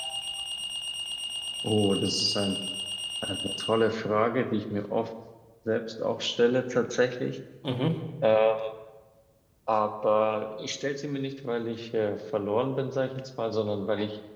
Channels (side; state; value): both; identical; correlation 1.00